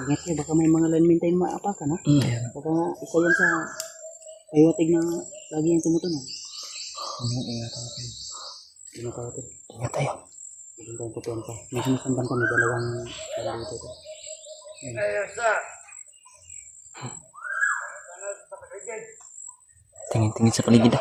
Ingat kayo. Baka may mga linemen tayong maapakan ha. Baka isa yan sa ayawatig na lagi yung tumutunog. Ingat natin. Ingat natin. ingat tayo. Hindi tayo kutuan pa. May sinasamban kami. Dalawang dito ito. Tingin-tingin sa paligid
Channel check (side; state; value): both; identical; correlation 1.00